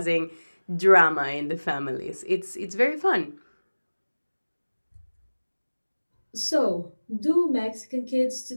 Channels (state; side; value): inverted; both; correlation -1.00